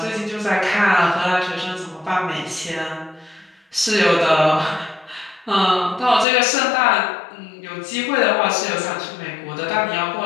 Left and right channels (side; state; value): right; drops out; at 6.2 s